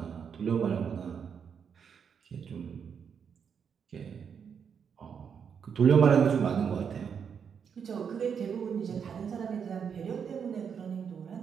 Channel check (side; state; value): left; quieter; 7.0 dB